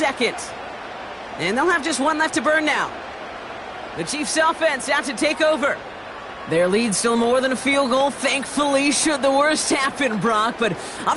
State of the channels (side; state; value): both; identical; correlation 1.00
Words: And they'll have just one left to burn now. The Chiefs offense out to take over. Their lead still more than a field goal, thankfully, should the worst happen, Brock. But